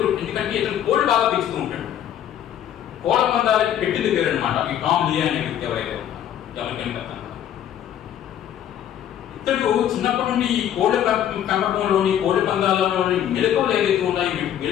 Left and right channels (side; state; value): right; quieter; 10.4 dB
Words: ఇతను కోళ్ళు బాగా పెంచుతూ ఉంటాడు. కోళ్ళ పందాలకి పెట్టింది పేరు అనమాట ఈ టామ్ లియే అనే వ్యక్తి ఎవరైతే ఉన్నారో అమెరికన్ పెత్తందారు. ఇతడు చిన్నప్పటి నుండి ఈ కోళ్ళ పెంపకంలోని కోళ్ళ పందాలలోని మెలకువలు ఏదైతే ఉన్నాయో ఈ